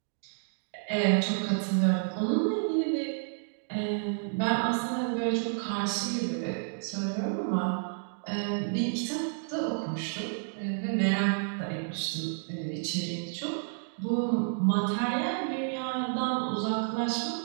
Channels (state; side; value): silent; left; digital silence